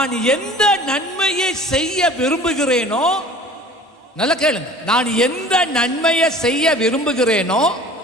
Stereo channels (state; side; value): normal; both; correlation 0.45